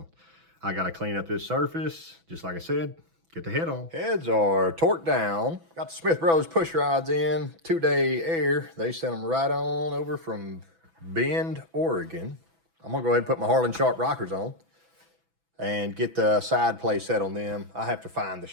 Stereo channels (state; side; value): late; left; 6.0 ms